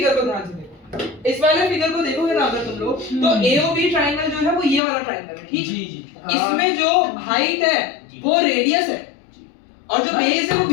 को ध्यान से देखो, इस वाले फिगर को देखोगे ना अगर तुम लोग तो AOB ट्रायंगल जो है वो ये वाला ट्रायंगल है, ठीक? इसमें जो हाइट है वो रेडियस है और जो बेस है वो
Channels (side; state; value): right; drops out; at 4.8 s